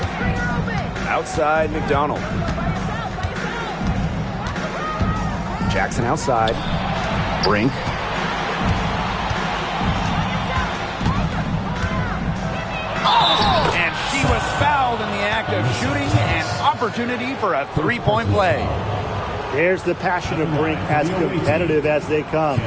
Outside, McDonald. Jackson outside. Brink. And she was fouled in the act of shooting. An opportunity for a 3-point play. There's the passion of Brink, as competitive as they come.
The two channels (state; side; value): identical; both; correlation 1.00